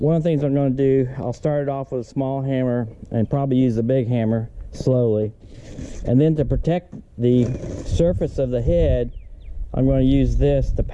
one of the things I'm going to do, I'll start it off with a small hammer and probably use the big hammer slowly, and then to protect the surface of the head, I'm going to use this to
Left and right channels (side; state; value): both; identical; correlation 1.00